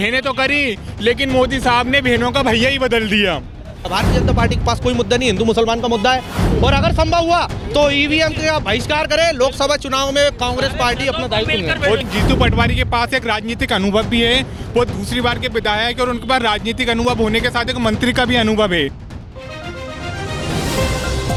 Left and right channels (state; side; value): identical; both; correlation 1.00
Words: तो करी, लेकिन मोदी साहब ने बहनों का भैया ही बदल दिया। भारतीय जनता पार्टी के पास कोई मुद्दा नहीं, हिंदू मुसलमान का मुद्दा है। और अगर संभव हुआ तो ईवीएम का बहिष्कार करे। लोकसभा चुनाव में कांग्रेस पार्टी अपना दायित्व निभाए। और जीतू पटवारी के पास एक राजनीतिक अनुभव भी है, वो दूसरी बार के विधायक और उनके पास राजनीतिक अनुभव होने के साथ एक मंत्री का भी अनुभव है।